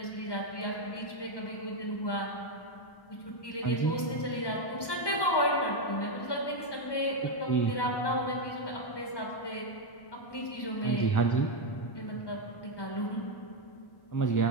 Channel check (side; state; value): right; late; 1.2 ms